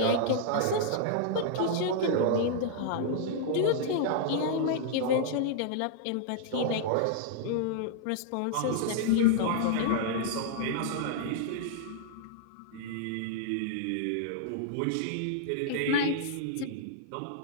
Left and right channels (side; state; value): both; different; correlation -0.01